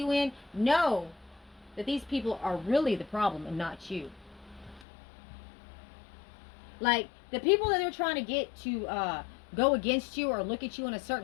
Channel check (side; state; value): right; drops out; at 4.9 s